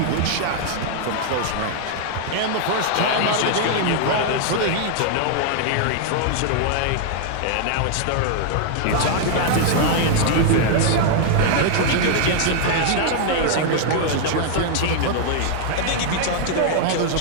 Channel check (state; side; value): different; both; correlation -0.01